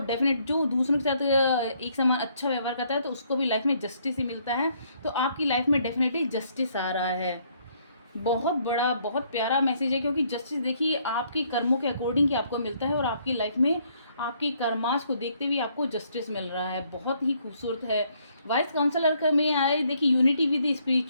जो दूसरों के साथ एक समान अच्छा व्यवहार करता है, तो उसको भी लाइफ में जस्टिस ही मिलता है। तो आपकी लाइफ में डेफिनेटली जस्टिस आ रहा है। बहुत बड़ा, बहुत प्यारा मैसेज है, क्योंकि जस्टिस देखिए आपके कर्मों के अकॉर्डिंग ही आपको मिलता है, और आपकी लाइफ में आपके कर्मास को देखते हुए आपको जस्टिस मिल रहा है, बहुत ही खूबसूरत है। वाइस काउंसलर का में आए देखिए unity with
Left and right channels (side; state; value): both; inverted; correlation -0.68